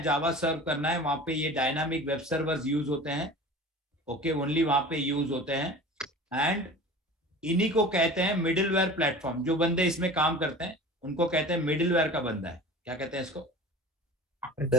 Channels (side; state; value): both; normal; correlation 0.38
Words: जावा सर्व करना है, वहां पे ये डायनामिक वेब सर्वर्स यूज होते हैं। ओके, ओनली वहां पे यूज होते हैं। एंड इन्हीं को कहते हैं मिडिलवेयर प्लेटफॉर्म। जो बंदे इसमें काम करते हैं उनको कहते हैं मिडिलवेयर का बंदा है। क्या कहते हैं इसको?